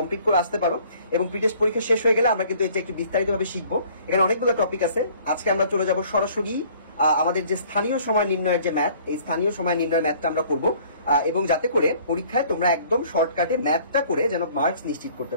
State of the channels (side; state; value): both; inverted; correlation -0.55